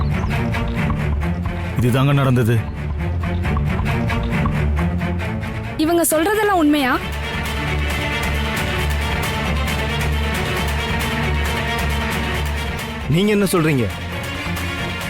இதுதாங்க நடந்தது. இவங்க சொல்றதெல்லாம் உண்மையா? நீங்க என்ன சொல்றீங்க?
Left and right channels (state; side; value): identical; both; correlation 1.00